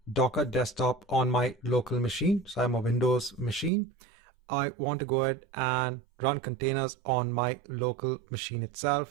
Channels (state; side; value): drops out; left; at 3.7 s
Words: Docker Desktop on my local machine. So I'm a Windows machine. I want to go ahead and run containers on my local machine